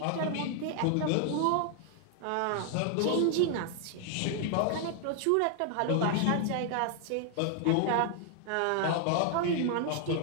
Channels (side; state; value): both; different; correlation 0.00